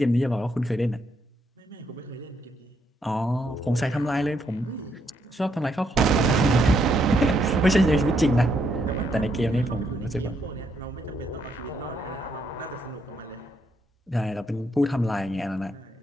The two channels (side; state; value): both; normal; correlation 0.75